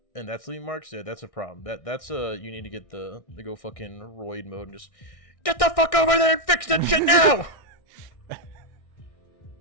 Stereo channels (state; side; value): late; right; 1.6 ms